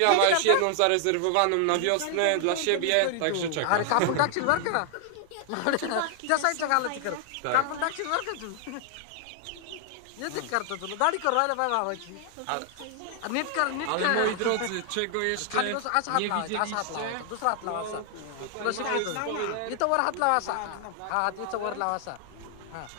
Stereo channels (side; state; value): both; different; correlation 0.00